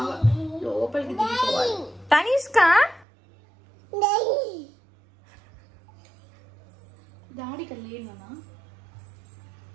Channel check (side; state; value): left; drops out; at 3.1 s